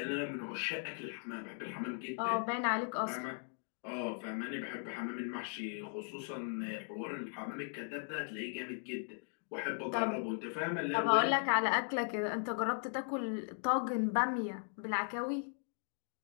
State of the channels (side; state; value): right; silent; 52 dB below the other